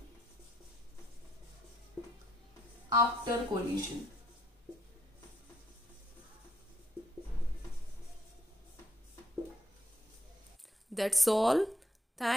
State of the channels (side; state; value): both; normal; correlation 0.72